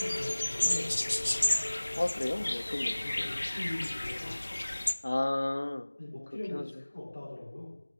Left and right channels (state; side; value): inverted; both; correlation -1.00